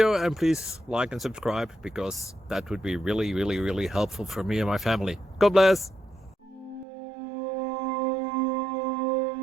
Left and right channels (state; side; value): drops out; left; at 6.9 s